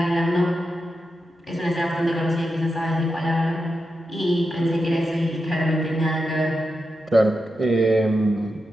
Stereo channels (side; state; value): both; normal; correlation 0.88